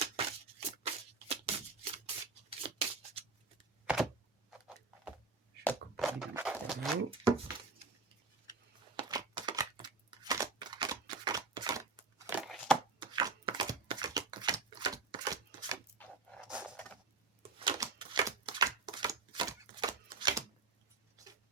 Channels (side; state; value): left; quieter; 4.2 dB